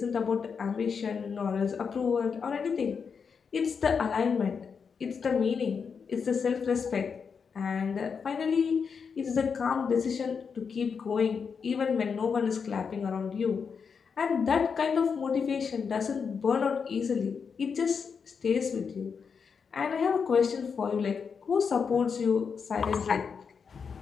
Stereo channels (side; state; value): right; quieter; 6.0 dB